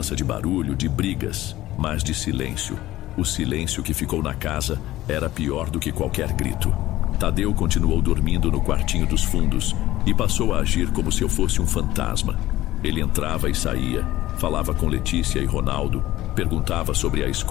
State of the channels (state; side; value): quieter; right; 15.7 dB